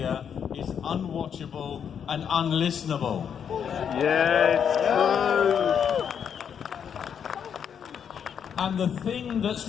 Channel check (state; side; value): quieter; right; 7.8 dB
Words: is unwatchable and unlistenable. Yes, true. And the thing that's